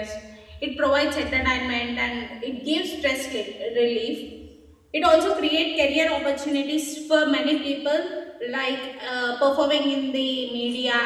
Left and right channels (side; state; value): both; identical; correlation 1.00